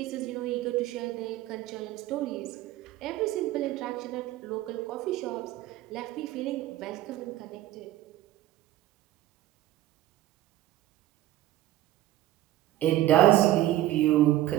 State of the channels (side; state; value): left; quieter; 14.7 dB